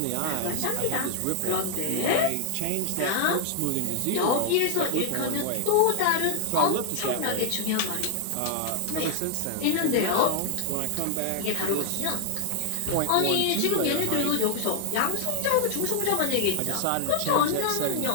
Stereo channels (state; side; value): different; both; correlation 0.00